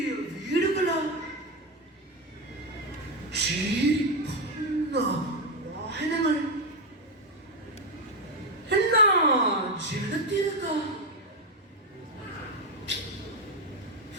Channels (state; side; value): normal; both; correlation 0.08